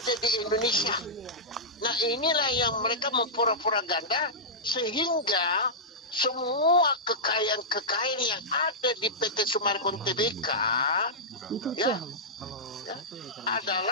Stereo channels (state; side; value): normal; both; correlation -0.12